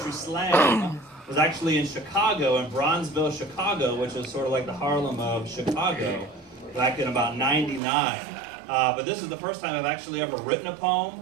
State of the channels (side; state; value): left; drops out; at 7.8 s